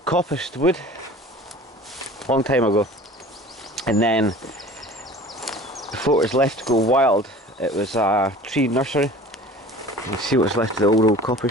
coppiced wood, long time ago, and then before it was left to go wild, it was a tree nursery. You can see what's left of the old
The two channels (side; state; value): both; normal; correlation 0.43